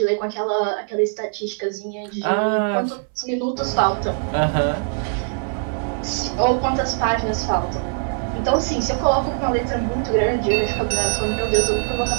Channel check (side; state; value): left; silent; 64 dB below the other